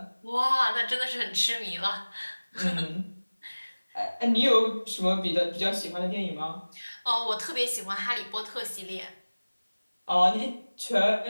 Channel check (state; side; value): inverted; both; correlation -1.00